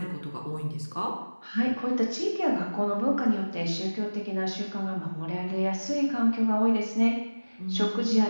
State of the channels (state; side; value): inverted; both; correlation -1.00